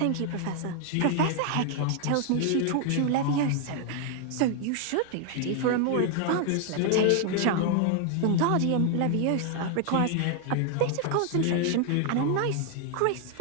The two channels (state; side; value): different; both; correlation 0.00